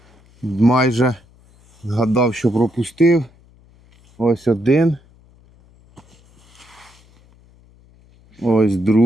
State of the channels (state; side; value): noise; left; hum, 30 dB below the sound